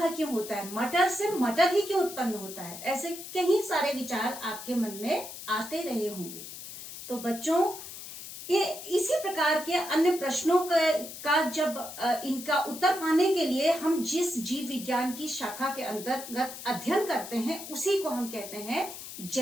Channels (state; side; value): noise; left; hiss, 11 dB below the sound